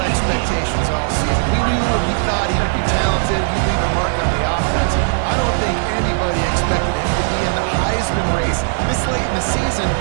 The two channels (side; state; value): left; silent; digital silence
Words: expectations all season. We knew and we thought he would be talented. He'd leave a mark on the offense. I don't think anybody expected him to be in the Heisman race this late in the season.